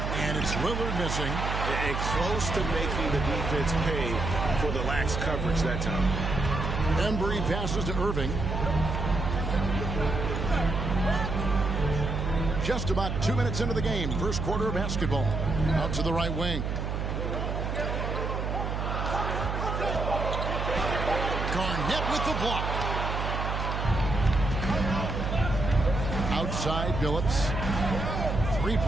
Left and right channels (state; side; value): noise; right; hum, 2 dB below the sound